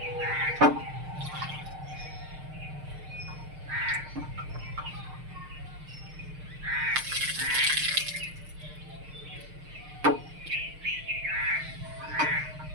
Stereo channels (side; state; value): left; late; 6.5 ms